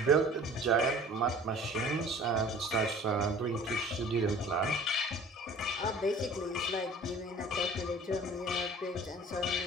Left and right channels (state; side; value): normal; both; correlation 0.47